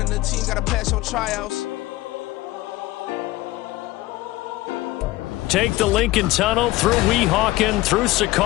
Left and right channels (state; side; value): quieter; right; 18.4 dB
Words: in the team, gotta pass your tryouts. Take the Lincoln Tunnel through Weehawken, through